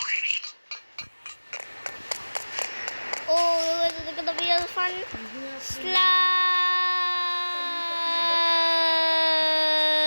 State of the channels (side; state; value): both; inverted; correlation -1.00